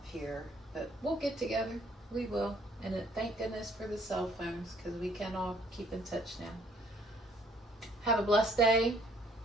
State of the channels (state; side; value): normal; both; correlation 0.61